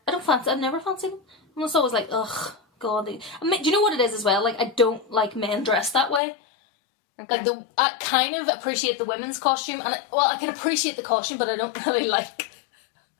I've never fancied him. I'm just always like, ugh, God. I mean, do you know what it is as well? Like, I don't like men dressed that way. Okay. Like, I kind of appreciate the women's costume, and I can appreciate the costume, but I don't really like,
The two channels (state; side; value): drops out; right; at 6.2 s